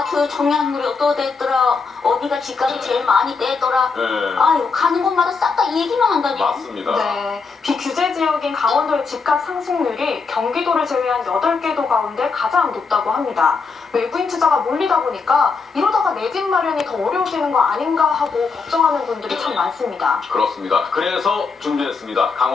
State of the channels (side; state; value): right; quieter; 4.8 dB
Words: 청약률이 어떠됐더라, 어디가 집값이 제일 많이 떼더라. 네, 아유, 가는 곳마다 싹 다 얘기만 한다니까. 맞습니다. 네, 비규제 지역인 강원도의 집값 상승률이 경기도를 제외한 8개 도 가운데 가장 높다고 합니다. 외부인 투자가 몰리다 보니까 이러다가 내 집 마련이 더 어려워지는 거 아닌가 하고 걱정하는 분들이 참 많습니다. 그렇습니다. 그래서 준비했습니다.